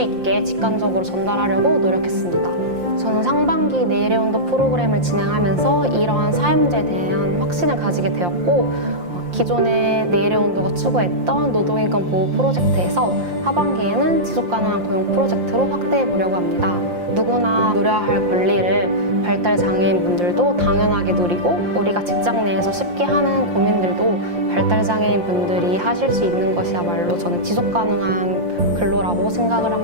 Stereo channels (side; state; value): left; late; 5.7 ms